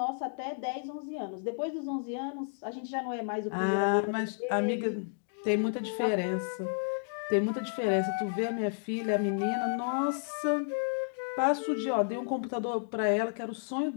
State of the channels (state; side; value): silent; right; digital silence